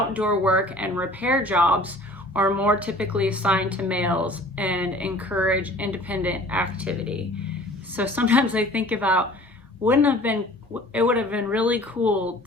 work and repair jobs are more typically assigned to males and encourage independent activity. So sometimes I think about, it would have been really cool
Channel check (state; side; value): normal; both; correlation 0.48